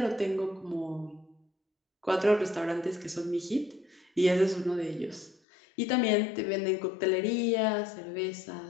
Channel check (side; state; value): right; drops out; at 5.4 s